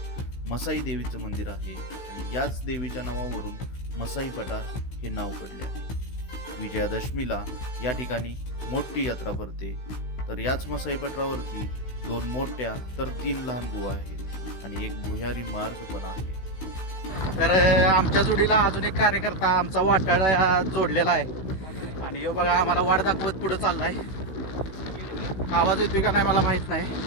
मसाई देवीचं मंदिर आहे आणि याच देवीच्या नावावरून मसाई पठार हे नाव पडले आहे. विजयादशमीला या ठिकाणी मोठी यात्रा भरते. तर याच मसाई पठारावरती 2 मोठ्या तर 3 लहान गुहा आहेत आणि एक भुयारी मार्ग पण आहे. तर आमच्या जोडीला अजून एक कार्यकर्ता आमचा वाटाडा जोडलेला आहे आणि यो बघा आम्हाला वाट दाखवत पुढे चाललाय. आवाज येतोय का नाही मला माहित नाही.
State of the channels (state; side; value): late; right; 16 ms